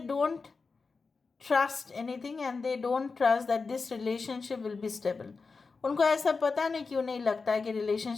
trust anything and they don't trust that this relationship will be stable. उनको ऐसा पता नहीं क्यों नहीं लगता है कि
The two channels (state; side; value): quieter; right; 4.5 dB